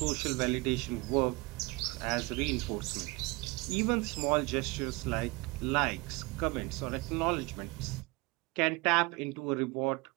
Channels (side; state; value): left; quieter; 25.2 dB